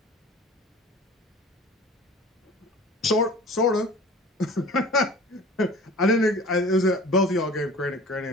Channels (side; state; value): both; normal; correlation 0.43